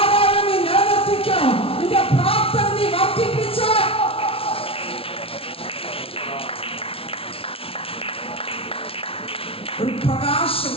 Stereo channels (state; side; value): late; right; 0.26 ms